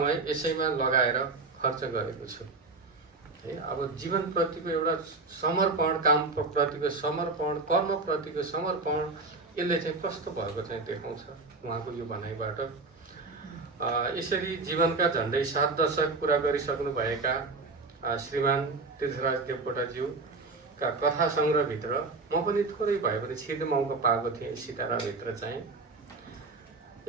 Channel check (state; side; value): quieter; left; 3.8 dB